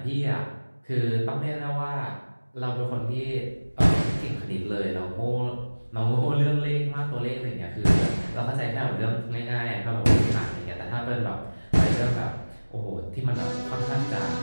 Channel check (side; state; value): both; inverted; correlation -1.00